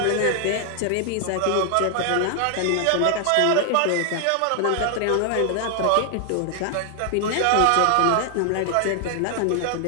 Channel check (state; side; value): different; both; correlation 0.00